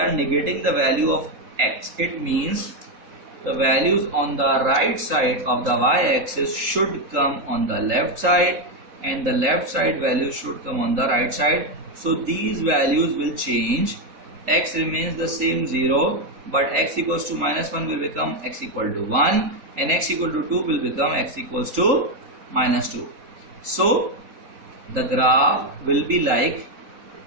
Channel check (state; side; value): late; left; 3.8 ms